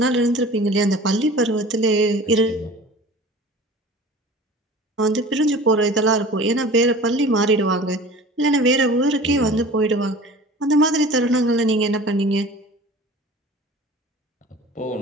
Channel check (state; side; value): normal; both; correlation 0.41